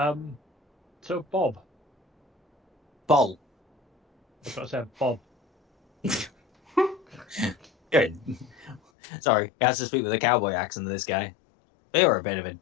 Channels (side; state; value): right; drops out; at 8.8 s